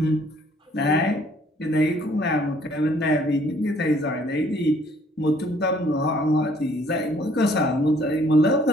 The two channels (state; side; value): normal; both; correlation 0.61